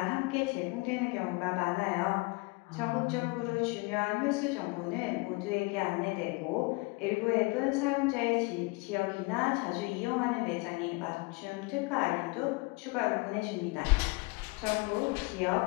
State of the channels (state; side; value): quieter; right; 26.4 dB